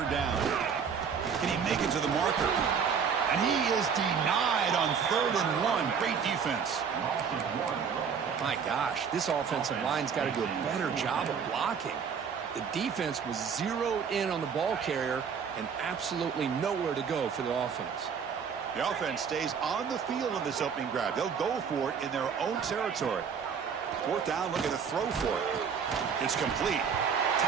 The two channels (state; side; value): quieter; left; 6.6 dB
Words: down. Can he make it to the marker? And he is denied on 3rd and 1. Great defense. My gosh, this offensive line's got to do a better job of blocking. The defense was zeroed in on the ball carrier and absolutely nowhere to go for the offense. The offense stays on the field in this opening drive. They'll go for it in their own territory. 4th down, looking to throw for it. It's complete.